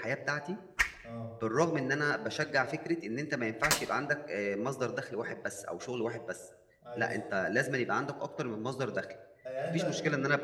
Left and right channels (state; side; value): identical; both; correlation 1.00